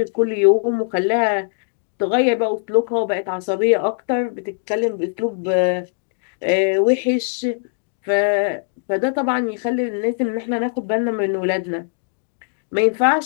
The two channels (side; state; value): right; silent; digital silence